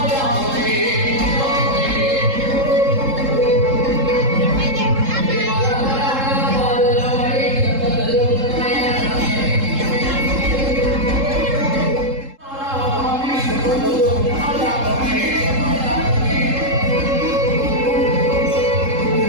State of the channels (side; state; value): left; late; 3.7 ms